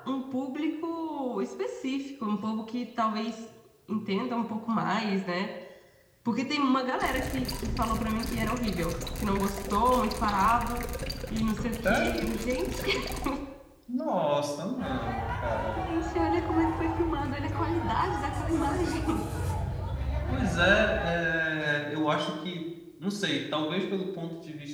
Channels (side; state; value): both; identical; correlation 1.00